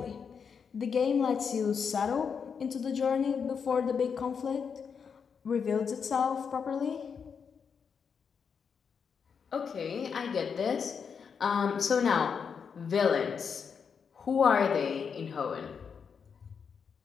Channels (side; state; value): right; quieter; 6.4 dB